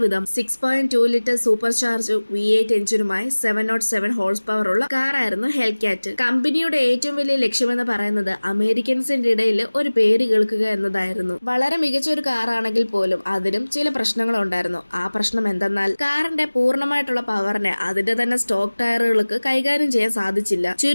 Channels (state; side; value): inverted; both; correlation -1.00